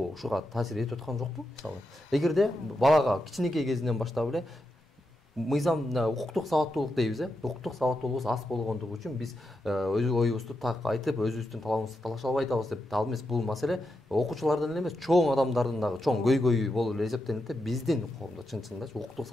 ушуга таасир этип аткан жокпу? Мисалы, эгерде балага кичинекей кезинен баштап эле мыйзам укуктук сабаттуулук дейбиз, укуктук сабаттуулугубуз аз болгондугу үчүн биз өз оюбузду так айтып, өзүбүздүн талабыбызды талаша албай атабыз деп, ал эмес бул маселе окуучулардын эле эмес, чоң адамдардын дагы чоң көйгөйү болуп эле эсептелинет да, биздин коомдо чын-чынында укуктук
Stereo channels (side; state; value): both; normal; correlation 0.86